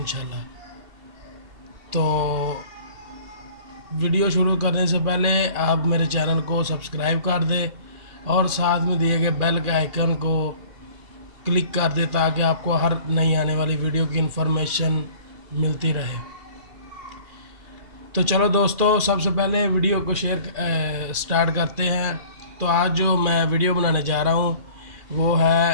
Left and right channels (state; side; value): late; left; 2.4 ms